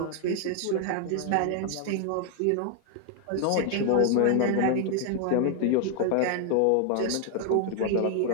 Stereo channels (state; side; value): different; both; correlation 0.00